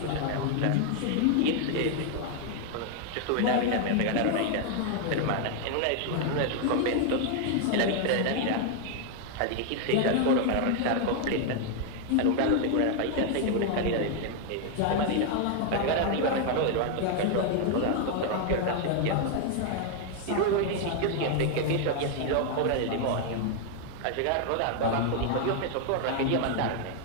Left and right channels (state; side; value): different; both; correlation 0.00